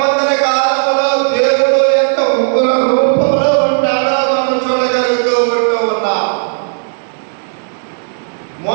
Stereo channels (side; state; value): left; silent; digital silence